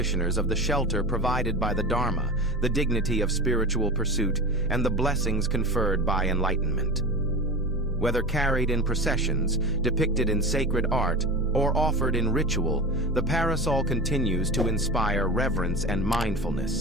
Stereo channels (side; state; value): both; normal; correlation 0.31